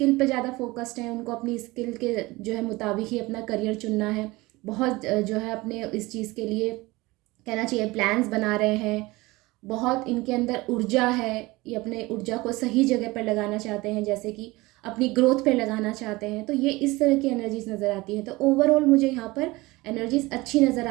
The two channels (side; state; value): left; quieter; 21.3 dB